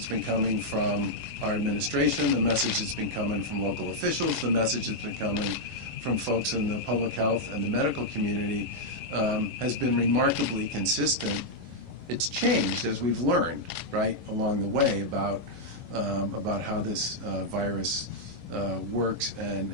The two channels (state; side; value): late; left; 11 ms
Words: been coming from our administration, the message that's been coming from local officials, the message that's been coming from folks in the public health and the medical community has been remarkably consistent. It's changed as we've learned, right, along the way about how this virus works